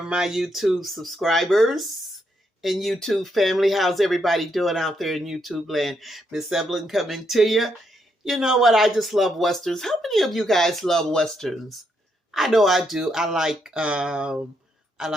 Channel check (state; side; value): normal; both; correlation 0.78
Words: my YouTube subscribers and YouTube family. How's everybody doing out there in YouTube land? Miss Evelyn coming to you. You know what? I just love Westerns. How many of you guys love Westerns? I know I do. I like